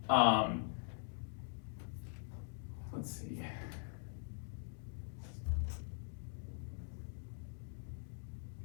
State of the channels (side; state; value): right; silent; digital silence